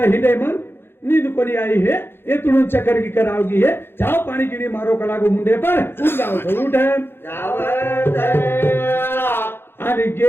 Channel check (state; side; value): late; right; 0.11 ms